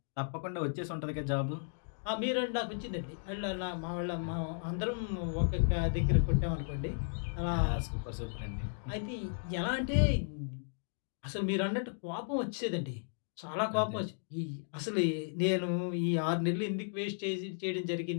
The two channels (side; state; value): right; silent; digital silence